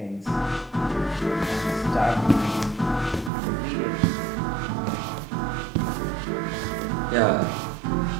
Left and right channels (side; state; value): left; drops out; at 3.3 s